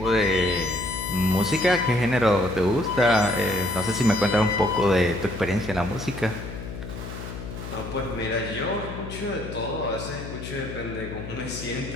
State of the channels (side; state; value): left; noise; hum, 9 dB below the sound